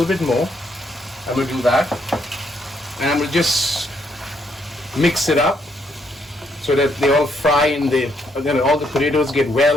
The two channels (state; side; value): normal; both; correlation 0.73